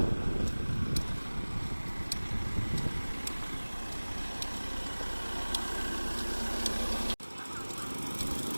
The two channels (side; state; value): both; inverted; correlation -1.00